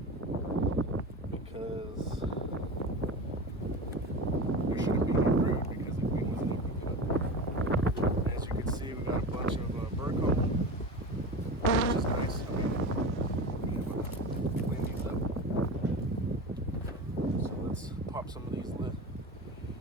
because there shouldn't be any brood because the queen wasn't open yet. As you can see, we got a bunch of burcomb, which is nice. Clean these up. So let's pop some of these lid.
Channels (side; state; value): both; normal; correlation 0.29